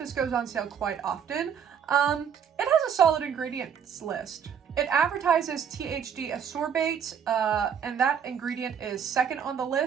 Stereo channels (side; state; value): left; quieter; 7.8 dB